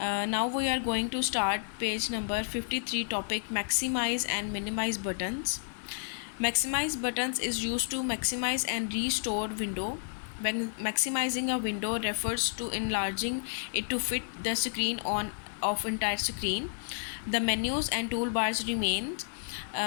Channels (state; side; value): silent; right; 57 dB below the other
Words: we are going to start page number 53, topic maximize and minimize buttons. Maximize buttons is used to maximize and restore window. When maximizing a window refers to enlarging it to fit the screen on of entire screen. The menus and toolbars remain,